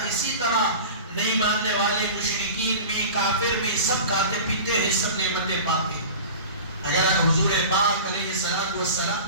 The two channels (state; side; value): inverted; both; correlation -0.36